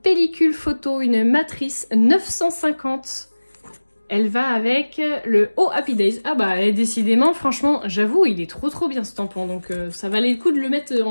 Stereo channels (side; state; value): both; inverted; correlation -1.00